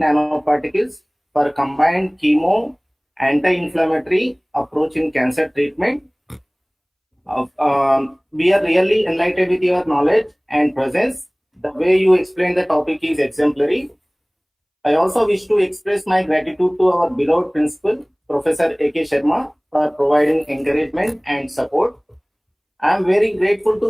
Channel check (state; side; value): identical; both; correlation 1.00